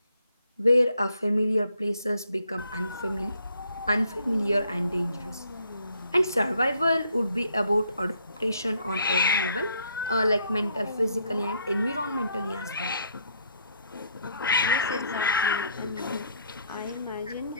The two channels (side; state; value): both; inverted; correlation -0.68